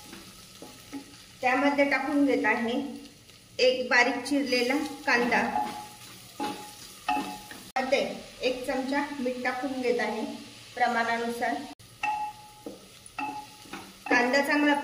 त्यामध्ये टाकून घेत आहे 1 बारीक चिरलेला कांदा, मध्ये 1 चमचा मीठ टाकून घेत आहे प्रमाणानुसार. कांदा चांगला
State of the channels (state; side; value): identical; both; correlation 1.00